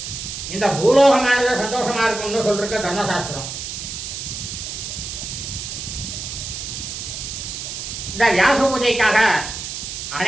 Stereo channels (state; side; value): noise; right; hiss, 7 dB below the sound